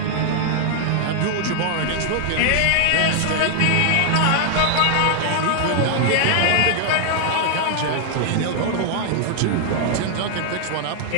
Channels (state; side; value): different; both; correlation 0.00